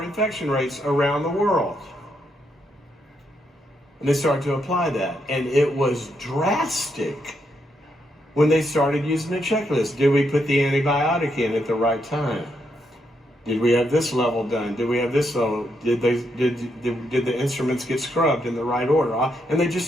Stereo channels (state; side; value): normal; both; correlation 0.79